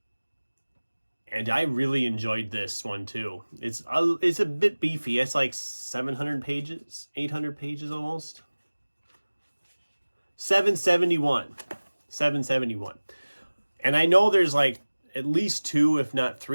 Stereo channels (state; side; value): inverted; both; correlation -1.00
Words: And I really enjoyed this one too. It's a bit beefy. It's like 700 pages, 800 pages almost. 771. And I know there's like at least 2, if not